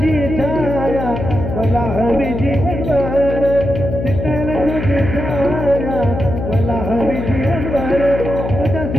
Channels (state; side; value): noise; left; hum, 5 dB below the sound